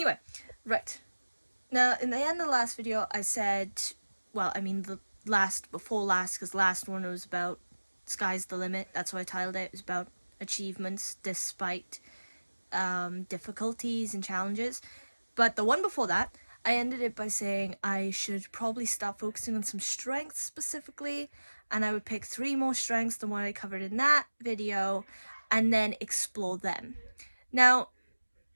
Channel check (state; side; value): inverted; both; correlation -1.00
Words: right. Now, in the end of the last video, I said, well, I mean the before last, because last one was about sky's the limit. That's what I titled it. It was about achievements despite difficulties and challenges. But the one before that, I ended it by saying I should probably start focusing on some strengths specifically, and I would pick 3 more strengths than what I covered in that video, and then explore them. Now,